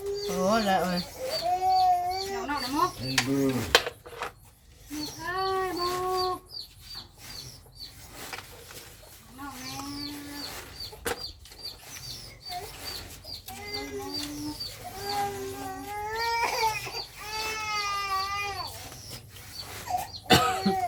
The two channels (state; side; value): identical; both; correlation 1.00